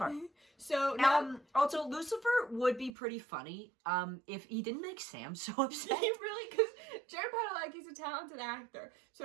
So now Also, Lucifer would be pretty funny if he didn't make Sam so he upset. really, because Jared Padalecki's a talented actor.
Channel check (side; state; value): left; drops out; at 2.9 s